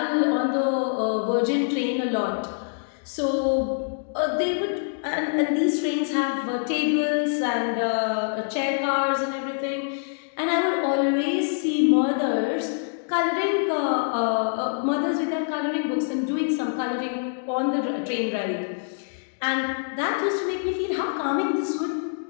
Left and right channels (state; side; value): silent; right; digital silence